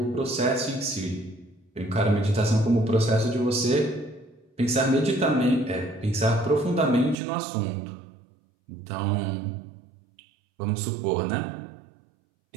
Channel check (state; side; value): drops out; left; at 7.2 s